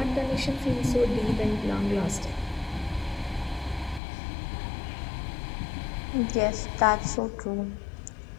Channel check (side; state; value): right; drops out; at 4.0 s